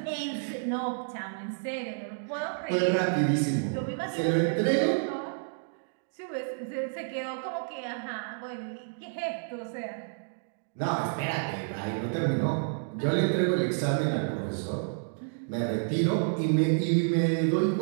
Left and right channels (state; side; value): silent; left; digital silence